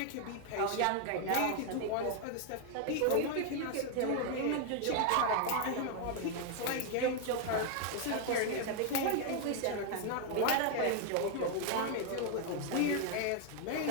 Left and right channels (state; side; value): different; both; correlation 0.00